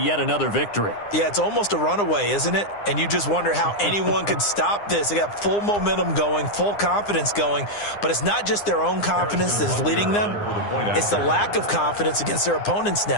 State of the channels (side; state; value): right; late; 9.8 ms